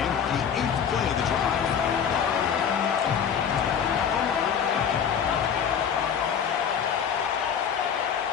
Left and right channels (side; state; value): right; quieter; 7.7 dB